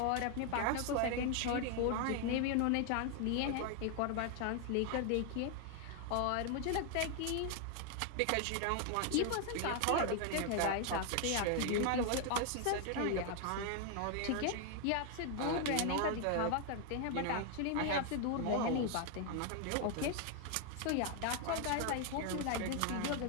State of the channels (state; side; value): different; both; correlation 0.00